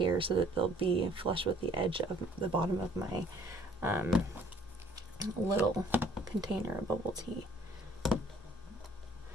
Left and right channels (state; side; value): normal; both; correlation 0.57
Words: so that they'll be flush with the edge of the bottom of my little container of bubble tea.